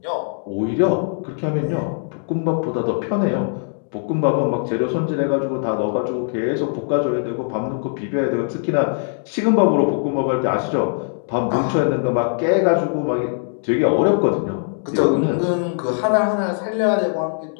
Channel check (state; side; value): silent; right; 65 dB below the other